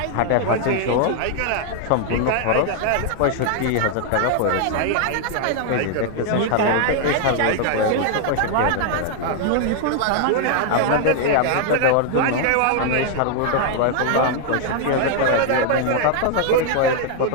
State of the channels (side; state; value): both; different; correlation 0.00